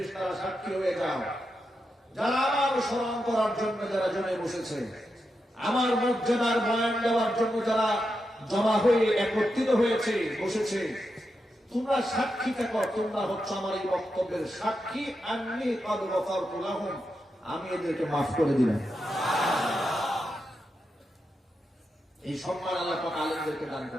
সাক্ষী হয়ে যাও, যারা আমার স্মরণ করার জন্য যারা জমে বসেছে, আমার মর্যাদার বয়ান দেওয়ার জন্য যারা জমা হয়ে একত্রিত হয়েছে, বসেছে, তোমরা সাক্ষী থাকো, তোমরা হচ্ছে আমার এই বক্তব্যের সাক্ষী। আন্নী ক্বাদ গফারতু লাহুম, আমি এদেরকে মাফ করে দিলাম। এই সম্মান আল্লাহ পাক আলেমদেরকে দান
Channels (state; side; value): normal; both; correlation 0.87